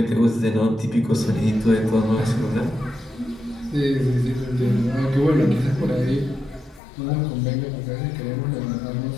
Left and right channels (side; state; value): right; drops out; at 6.8 s